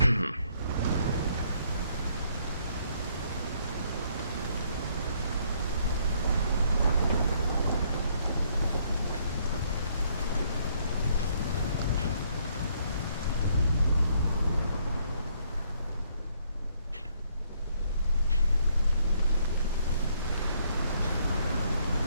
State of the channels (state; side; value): inverted; both; correlation -0.68